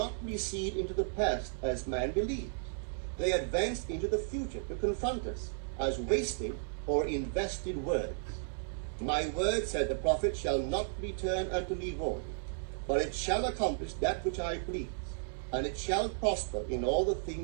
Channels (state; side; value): silent; left; digital silence